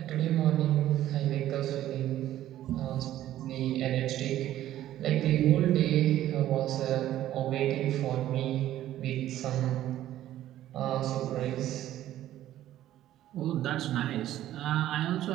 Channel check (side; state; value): left; quieter; 13.1 dB